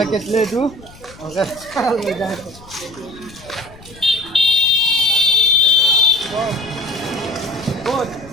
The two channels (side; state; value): left; noise; rumble, 21 dB below the sound